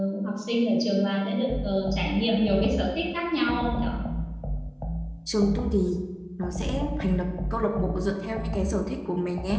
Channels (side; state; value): both; identical; correlation 1.00